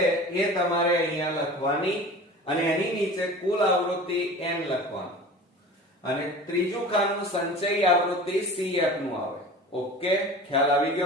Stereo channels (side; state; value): both; normal; correlation 0.38